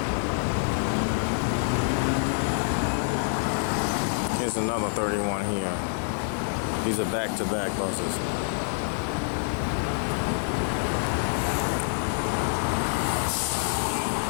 Here's another 31 here. These are back-to-back buses.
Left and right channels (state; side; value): silent; right; 60 dB below the other